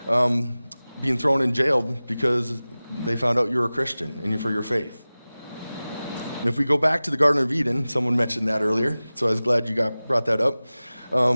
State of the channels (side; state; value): both; inverted; correlation -0.98